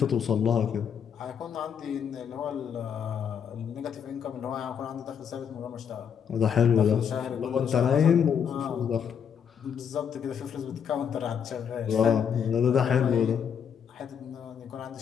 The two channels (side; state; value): right; quieter; 7.7 dB